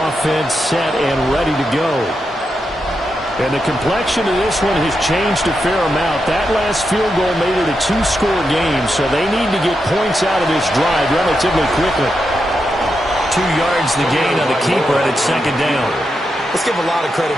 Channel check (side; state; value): both; normal; correlation 0.86